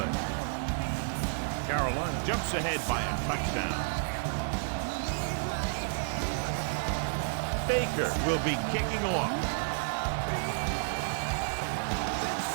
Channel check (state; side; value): silent; left; digital silence